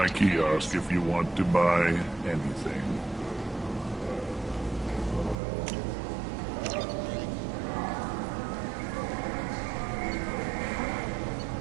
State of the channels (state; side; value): drops out; left; at 5.4 s